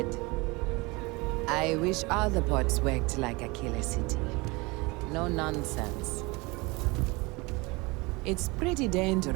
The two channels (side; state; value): left; quieter; 25.3 dB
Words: I wish all the ports worked like Aquila City. No nonsense. It's pretty